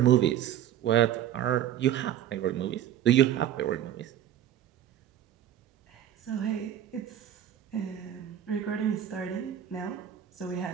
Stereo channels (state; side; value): quieter; left; 10.9 dB